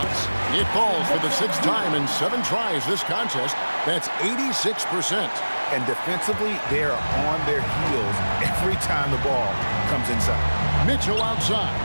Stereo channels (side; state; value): both; inverted; correlation -1.00